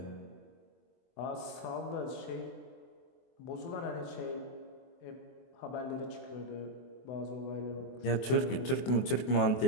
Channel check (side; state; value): right; late; 24 ms